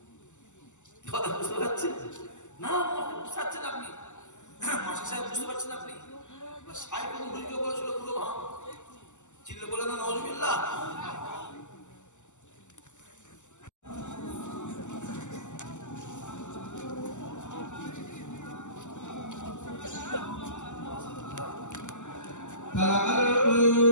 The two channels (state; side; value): late; right; 0.84 ms